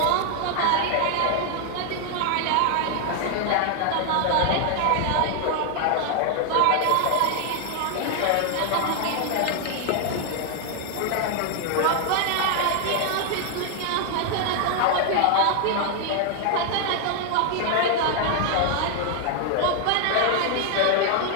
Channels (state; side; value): different; both; correlation 0.00